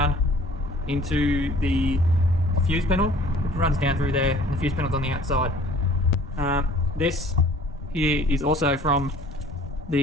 into the fuse panel. It runs down through there, and the fuse panel's on the outside. This here is also from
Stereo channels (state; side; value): normal; both; correlation 0.51